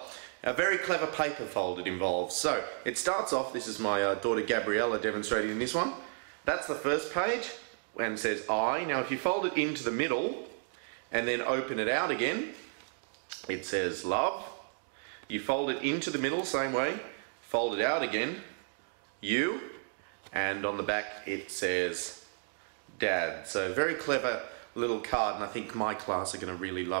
A very clever paper fold it involves. So it starts off, this is my daughter Gabriella demonstrating in this one. That's the first page. And says I. Now if you fold it into the middle and then open it out again, it says love. You fold it into the middle, same way, fold it out again, you, and on the back it says dad. So very clever little card, and I think my class are going to really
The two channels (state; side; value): silent; left; 56 dB below the other